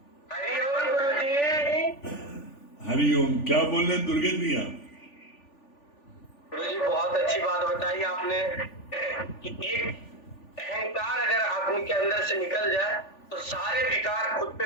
हरिओम गुरुजी। हरिओम, क्या बोल रहे हैं दुर्गेश भैया? गुरुजी बहुत अच्छी बात बताई आपने कि एक अहंकार अगर आदमी के अंदर से निकल जाए तो सारे विकार खुद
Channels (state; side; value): late; right; 3.4 ms